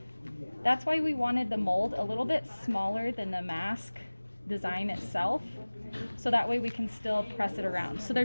That's why we wanted the mold a little bit smaller than the mask design itself, so that way we can still press it around. So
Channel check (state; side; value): inverted; both; correlation -1.00